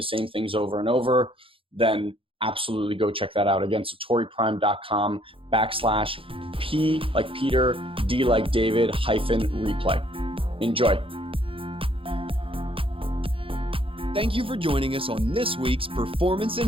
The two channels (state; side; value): late; left; 0.26 ms